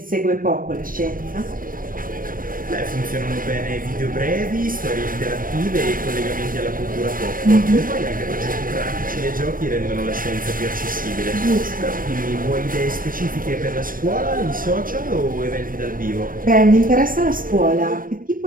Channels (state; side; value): late; left; 0.41 ms